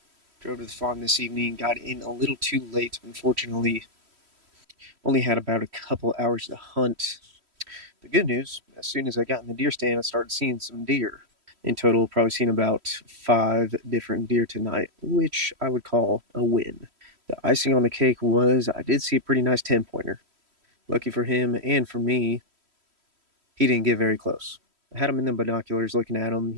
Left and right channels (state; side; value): late; left; 3.1 ms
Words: Drove to the farm this evening, got in a little too late, unfortunately. Only had about a couple hours to hunt. The good news, as soon as I got in the deer stand, I started seeing some deer. In total, probably seen about 5 different deer tonight, which I would call a win. The icing on the cake was I did see a pretty nice 10-pointer. Lucky for him and for me, he didn't get very close. I had him in the binoculars looking at him.